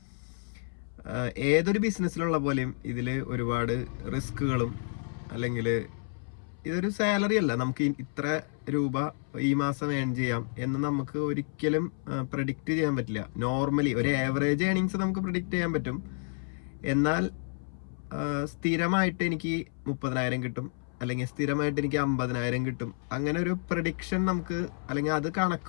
ഏതൊരു ബിസിനസ്സിലുള്ള പോലെയും ഇതിൽ ഒരുപാട് റിസ്കുകളും, അല്ലെങ്കിൽ ഇതൊരു സാലറി അല്ല, നമുക്ക് ഇത്ര രൂപ ഈ മാസം ഏൺ ചെയ്യാം എന്ന് നമുക്ക് ഒരിക്കലും പ്രഡിക്റ്റ് ചെയ്യാൻ പറ്റില്ല. നോർമലി ഒരു ആവറേജ് ഏണിങ്സ് നമുക്ക് പ്രഡിക്റ്റ് ചെയ്യാൻ പറ്റും. എന്നാൽ സ്ഥിരമായിട്ട് എനിക്ക് 30,000 കിട്ടും അല്ലെങ്കിൽ സ്ഥിരമായിട്ട് എനിക്ക് 50,000 കിട്ടും, അങ്ങനെ ഒരു പ്രഡിക്ഷൻ നമുക്ക് അല്ലെങ്കിൽ അത്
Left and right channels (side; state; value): right; silent; 58 dB below the other